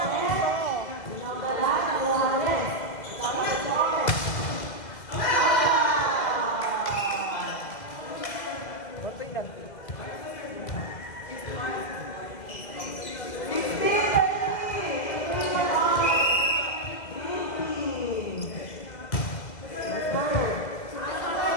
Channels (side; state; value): right; late; 2.0 ms